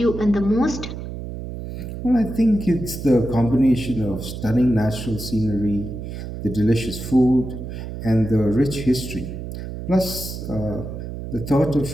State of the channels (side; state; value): right; noise; hum, 8 dB below the sound